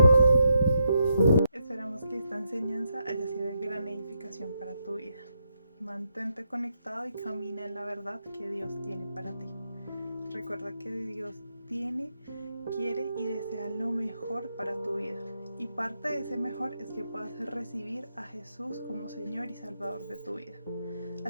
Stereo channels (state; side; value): inverted; both; correlation -0.80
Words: Esperamos que esta enseñanza haya sido de gran edificación para tu vida. Mantente conectado y camina en la verdad que Dios tiene para ti. Recuerda que Dios tiene, quiere y desea lo mejor para tu vida. Y parte de ese mejor es que puedas recibir a Jesús como Señor y Salvador de tu vida.